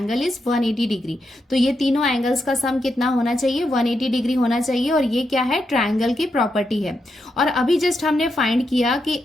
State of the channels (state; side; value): normal; both; correlation 0.84